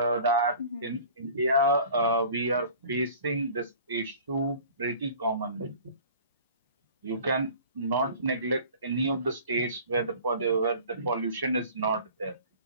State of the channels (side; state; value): both; inverted; correlation -0.45